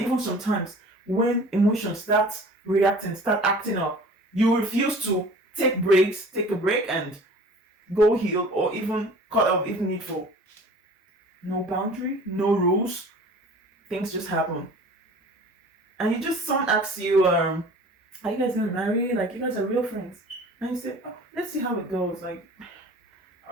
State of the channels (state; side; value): normal; both; correlation 0.45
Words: sometimes when emotions start reacting, start acting up, you refuse to take a break and go heal, or even cut off if needful. No boundary, no rules. Things just happen. And someone asks you, are you guys gonna marry? Like, you guys are real friends. And you say, oh, let's see how it goes. Like,